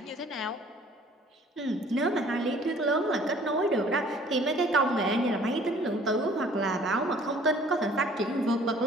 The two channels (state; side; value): normal; both; correlation 0.54